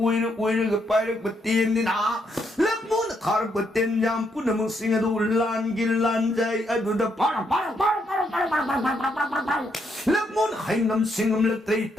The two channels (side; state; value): both; normal; correlation 0.76